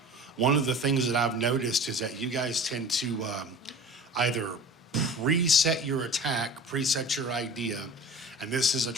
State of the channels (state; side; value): normal; both; correlation 0.39